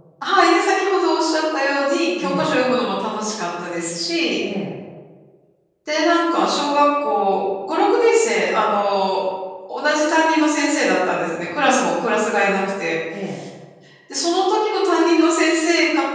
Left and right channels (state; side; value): identical; both; correlation 1.00